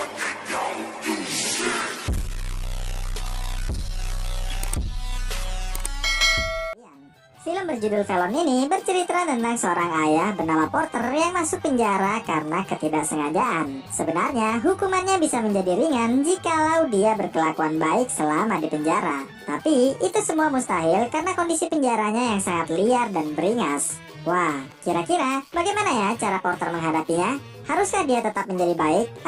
Film berjudul Velon ini bercerita tentang seorang ayah bernama Porter yang masuk penjara karena ketidaksengajaan. Sebenarnya hukumannya bisa menjadi ringan jikalau dia berkelakuan baik selama di penjara. Tapi itu semua mustahil karena kondisi penjaranya yang sangat liar dan beringas. Wah, kira-kira bagaimana ya cara Porter menghadapinya? Haruskah dia tetap menjadi baik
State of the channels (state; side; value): identical; both; correlation 1.00